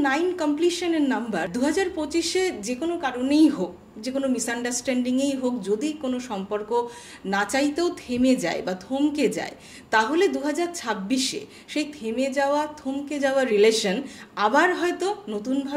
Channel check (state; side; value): identical; both; correlation 1.00